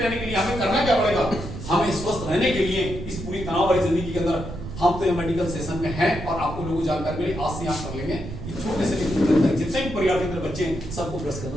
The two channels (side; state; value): right; noise; rumble, 9 dB below the sound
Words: के लिए हमें करना क्या पड़ेगा? हमें स्वस्थ रहने के लिए इस पूरी तनाव भरी जिंदगी के अंदर हम तो ये मेडिकल सेशन में हैं और आपको लोगों को जानकारी मिली, आज से आप कर लेंगे कि छोटे से लेकर जितने भी परिवार के अंदर बच्चे हैं सबको ब्रश करना